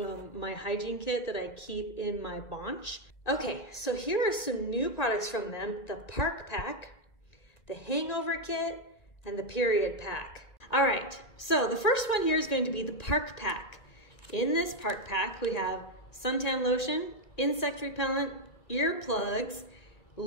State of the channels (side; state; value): right; late; 2.2 ms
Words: my hygiene kit that I keep in my bunch. Okay, so here are some new products from them: the Park Pack, the Hangover Kit, and the Period Pack. All right, so the first one here is going to be the Park Pack. In this Park Pack, we have suntan lotion, insect repellent, earplugs,